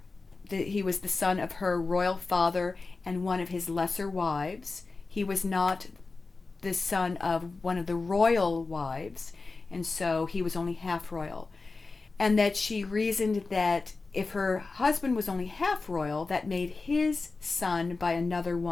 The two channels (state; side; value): quieter; right; 3.9 dB